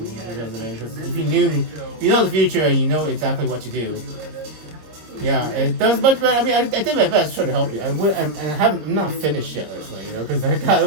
Because if you know the future, you know exactly what to do. Yeah, it does much better. I mean, I did my best to try to help you. I'm not finished yet, actually, you know, because I got a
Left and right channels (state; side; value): late; left; 26 ms